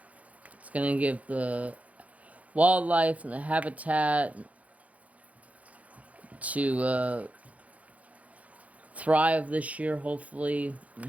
It's going to give the wildlife and the habitat to thrive this year, hopefully, and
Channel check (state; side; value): late; left; 0.068 ms